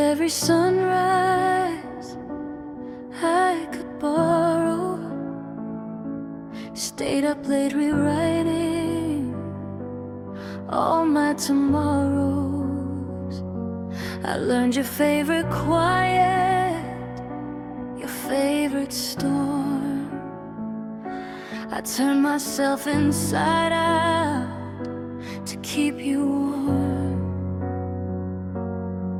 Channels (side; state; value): both; identical; correlation 1.00